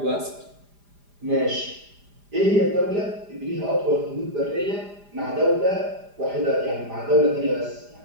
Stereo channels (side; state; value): left; late; 4.9 ms